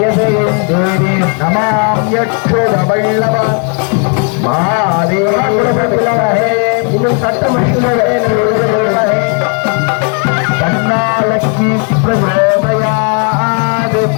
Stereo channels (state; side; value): quieter; right; 39.1 dB